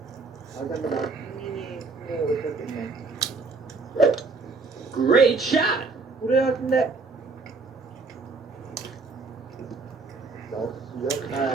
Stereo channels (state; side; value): quieter; left; 4.0 dB